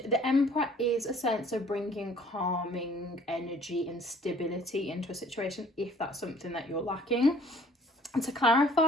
Emperor is a sense of bringing calming energy and stability into a situation if that's something that you're lacking. And to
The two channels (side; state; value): both; normal; correlation 0.55